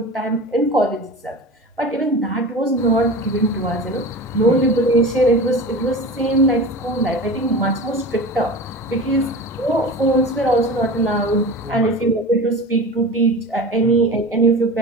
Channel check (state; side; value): normal; both; correlation 0.33